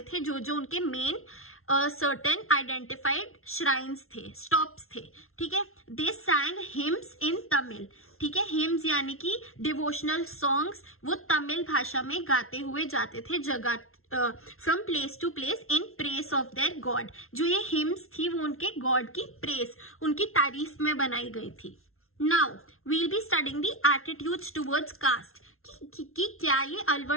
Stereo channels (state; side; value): late; right; 0.62 ms